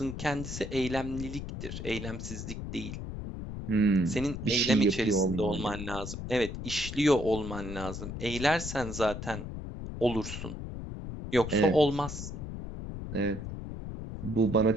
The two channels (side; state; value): left; noise; rumble, 8 dB below the sound